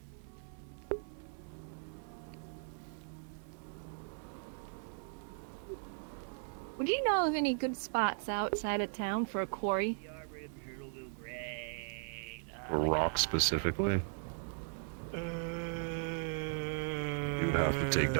Would you know of any good spots outside of town for a quarry? Or rock specifically. You'd have to take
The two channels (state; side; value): silent; left; digital silence